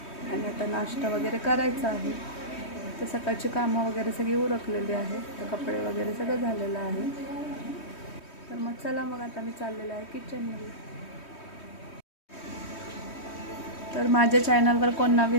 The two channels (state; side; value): late; right; 3.2 ms